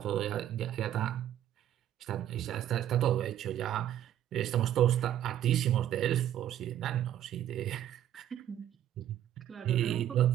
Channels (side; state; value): left; quieter; 11.5 dB